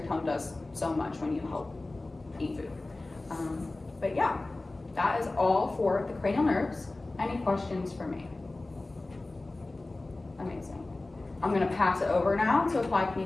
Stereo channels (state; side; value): quieter; right; 3.0 dB